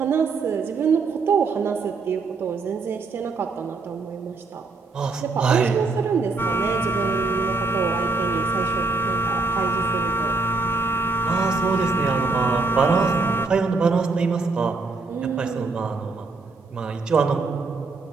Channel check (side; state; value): left; quieter; 4.0 dB